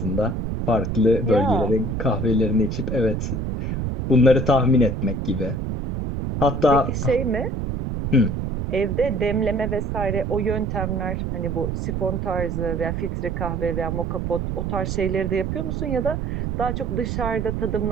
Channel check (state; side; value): noise; right; rumble, 3 dB below the sound